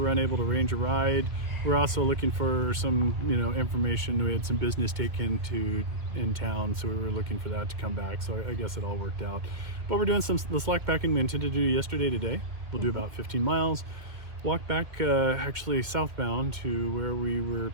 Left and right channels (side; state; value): left; late; 2.2 ms